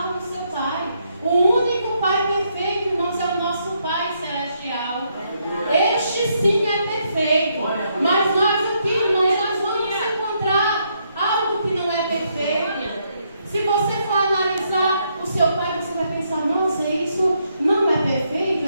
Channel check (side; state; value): both; inverted; correlation -0.76